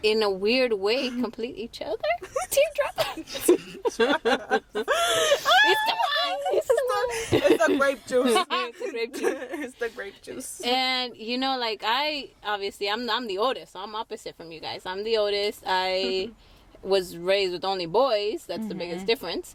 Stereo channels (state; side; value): identical; both; correlation 1.00